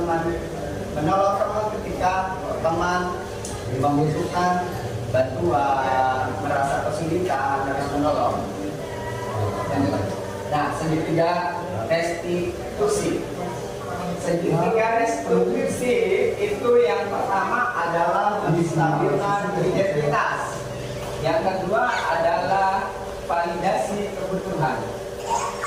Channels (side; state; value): both; identical; correlation 1.00